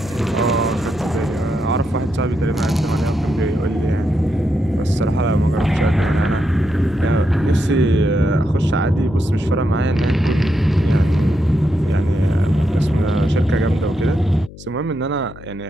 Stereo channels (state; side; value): noise; left; hum, 17 dB below the sound